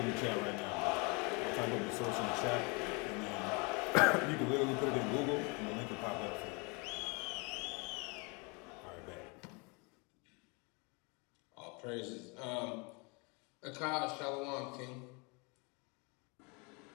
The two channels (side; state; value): right; quieter; 30.7 dB